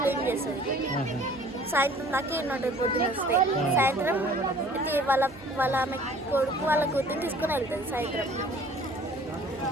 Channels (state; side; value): noise; right; hum, 24 dB below the sound